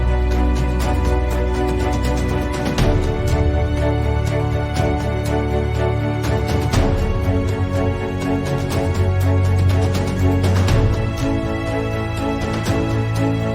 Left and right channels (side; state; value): both; identical; correlation 1.00